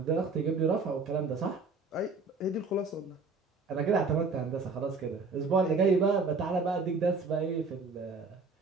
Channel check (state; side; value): quieter; left; 4.0 dB